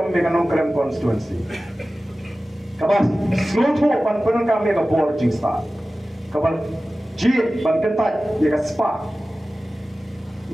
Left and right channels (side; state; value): both; normal; correlation 0.96